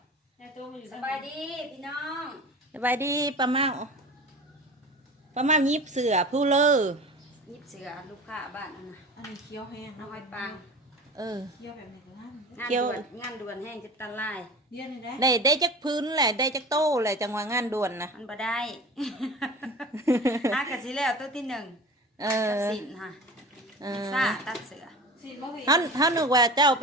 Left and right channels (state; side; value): normal; both; correlation 0.36